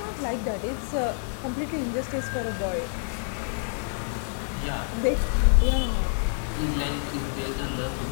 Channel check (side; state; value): right; silent; digital silence